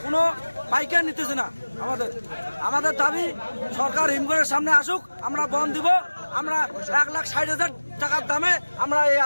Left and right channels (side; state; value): both; inverted; correlation -1.00